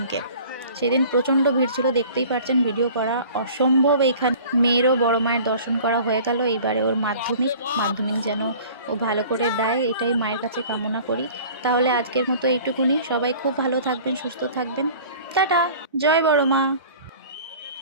সেদিন প্রচণ্ড ভিড় ছিল, দেখতেই পাচ্ছেন, ভিডিও করা অসম্ভব। এইখানে মেয়েরও বড় মায়ের দর্শন করা হয়ে গেল। এইবারে ওর মাধ্যমিক যেন ও ভালো করে দেয়, এটাই মায়ের কাছে কামনা করি। তাহলে আজকের মতো এইটুকুনি। সবাই খুব ভালো থাকবেন, সুস্থ থাকবেন। টাটা, জয় বড় মা।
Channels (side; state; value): both; inverted; correlation -0.46